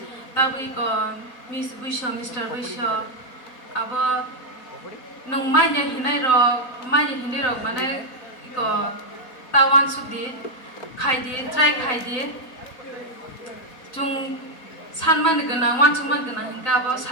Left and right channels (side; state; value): right; late; 4.0 ms